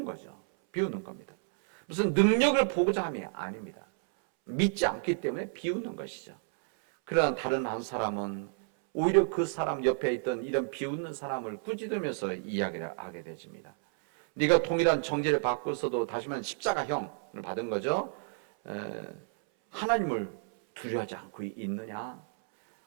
거죠. 비웃는 겁니다. 무슨 능력을 보고자 함이 아닙니다. 믿지 않기 때문에 비웃는 것이죠. 그러나 다른 한 사람은 오히려 그 사람 옆에 있던 이런 비웃는 사람을 꾸짖으면서 이야기를 하게 되집니다. 네가 동일한 정죄를 받고서도 다시만 십자가형을 받은 거죠. 하나님을 두려워하지 않고 있느냐?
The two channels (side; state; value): left; silent; 57 dB below the other